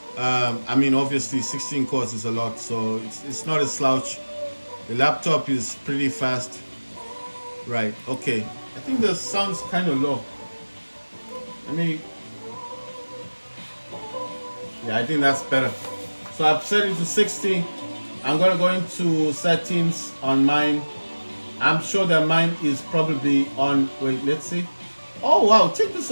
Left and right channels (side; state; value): both; inverted; correlation -1.00